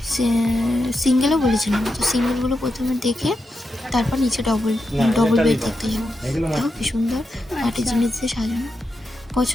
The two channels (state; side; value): normal; both; correlation 0.87